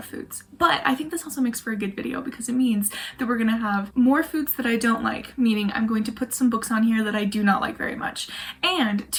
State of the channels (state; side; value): identical; both; correlation 1.00